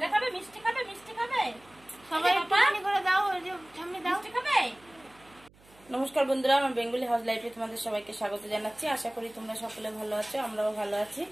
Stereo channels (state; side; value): noise; right; hum, 27 dB below the sound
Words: খাবে মিষ্টি খাবে সবাই পানি করে দাও ওই যে সামনে দাও মিষ্টি খাবে। নমস্কার বন্ধুরা, আমার বেঙ্গলি হাউস লাইফে তোমাদের সবাইকে স্বাগত জানাচ্ছি। আশা করি তোমরা সকলে ভালো আছো, আমরাও ভালো আছি।